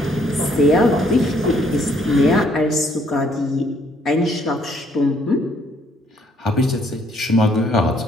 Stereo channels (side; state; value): both; normal; correlation 0.66